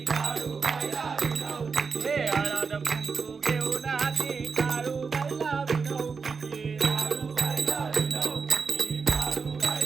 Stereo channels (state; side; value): quieter; left; 5.2 dB